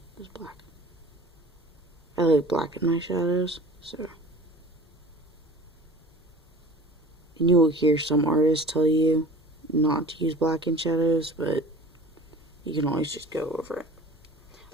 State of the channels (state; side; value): normal; both; correlation 0.42